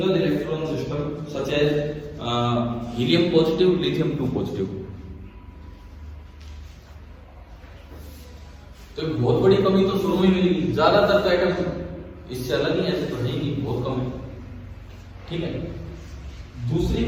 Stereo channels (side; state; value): both; identical; correlation 1.00